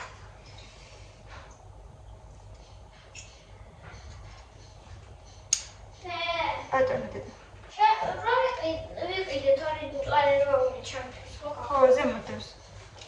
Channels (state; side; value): identical; both; correlation 1.00